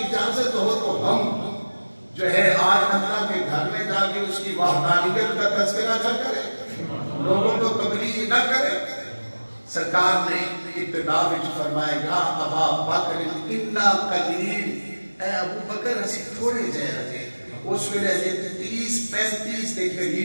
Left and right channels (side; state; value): both; inverted; correlation -1.00